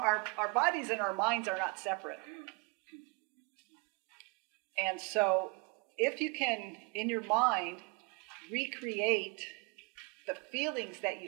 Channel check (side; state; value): left; quieter; 29.8 dB